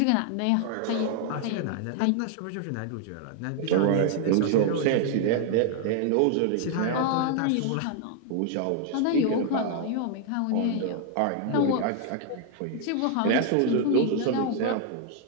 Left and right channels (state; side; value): different; both; correlation 0.00